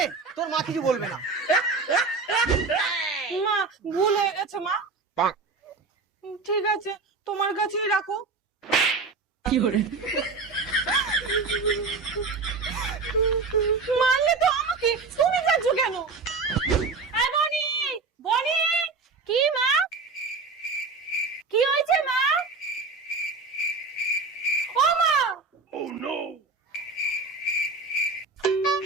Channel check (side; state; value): left; quieter; 4.1 dB